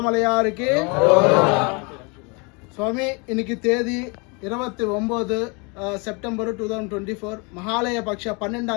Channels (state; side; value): quieter; right; 30.9 dB